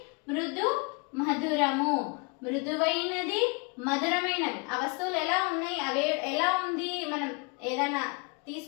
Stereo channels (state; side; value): quieter; right; 31.2 dB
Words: మృదు మధురము, మృదువైనది మధురమైనవి. ఆ వస్తువులు ఎలా ఉన్నాయి, అవే ఎలా ఉంది, మనం ఏదైనా